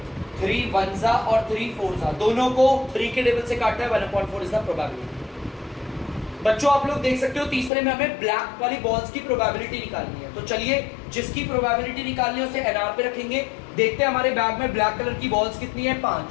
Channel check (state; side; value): drops out; right; at 7.7 s